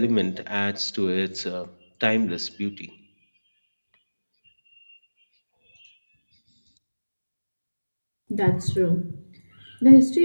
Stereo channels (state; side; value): inverted; both; correlation -1.00